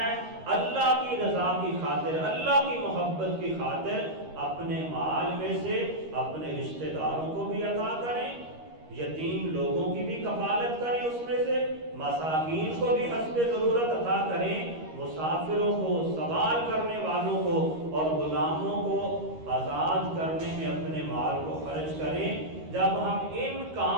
اللہ کی رضا کی خاطر، اللہ کی محبت کی خاطر، اپنے مال میں سے اپنے رشتہ داروں کو بھی عطا کریں، یتیم لوگوں کی بھی کفالت کریں، اس میں سے مساکین کو بھی حسب ضرورت عطا کریں، مسافروں کو، سوال کرنے والوں کو، اور غلاموں کو آزاد کرنے میں اپنے مال کو خرچ کریں۔ جب ہم ان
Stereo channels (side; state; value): left; late; 13 ms